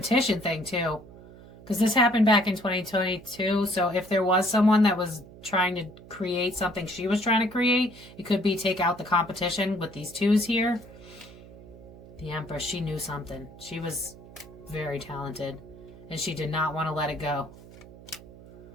thing too, because this happened back in 2022. So if there was someone that was trying to create something she was trying to create, it could be take out the competition with these twos here. The Empress, she knew something. She was very talented, and she did not want to let it go.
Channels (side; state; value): right; noise; hum, 19 dB below the sound